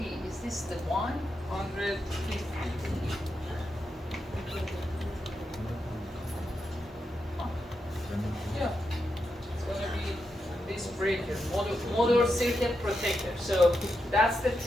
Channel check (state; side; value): normal; both; correlation 0.85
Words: is this the one? 150. Yeah, it's going to be this breaker, motor circuit protector. So that's the